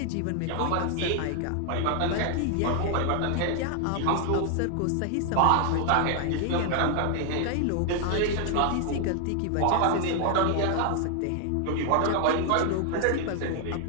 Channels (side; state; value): both; different; correlation 0.00